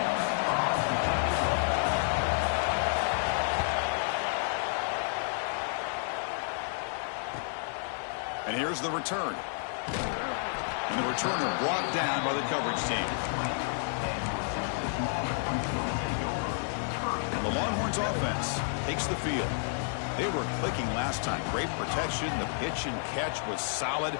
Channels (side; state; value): right; silent; digital silence